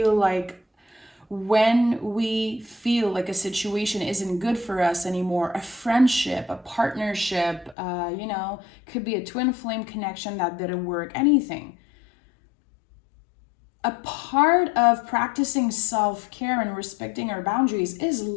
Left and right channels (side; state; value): right; drops out; at 7.8 s